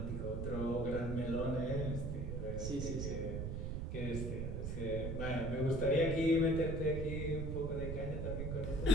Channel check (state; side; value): noise; right; rumble, 2 dB below the sound